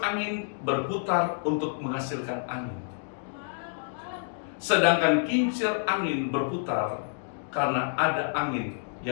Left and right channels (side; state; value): right; silent; digital silence